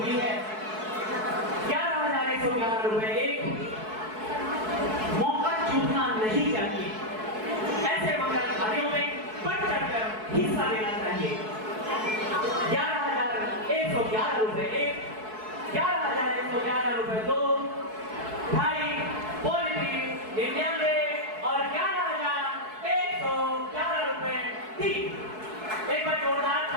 है। 11,111 रुपए एक मौका चूकना नहीं चाहिए। ऐसे मंगल कार्यों में बढ़ चढ़कर हिस्सा लेना चाहिए। 11,111 रुपए एक, 11,111 रुपए दो, ढाई, पौने तीन, 99 और 11,111 रुपए 3। एक बार जोरदार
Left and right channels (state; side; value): late; left; 4.6 ms